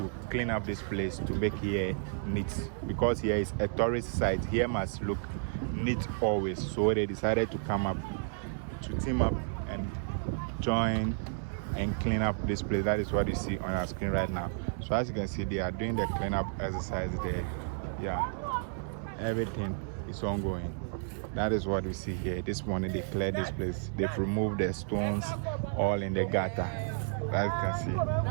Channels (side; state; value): left; silent; 56 dB below the other